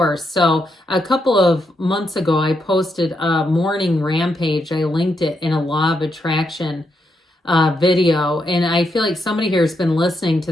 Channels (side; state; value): both; normal; correlation 0.81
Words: So a couple of months ago, I posted a morning rampage. I linked it in a law of attraction video. And I feel like somebody here has been listening to